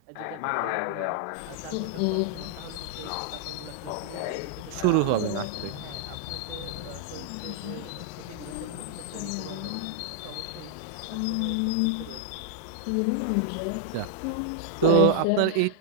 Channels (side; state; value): both; different; correlation -0.01